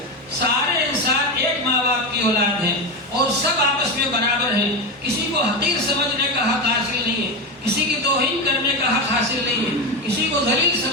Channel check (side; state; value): both; normal; correlation 0.17